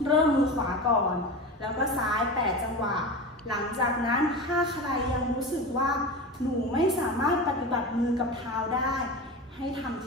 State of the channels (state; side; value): normal; both; correlation 0.27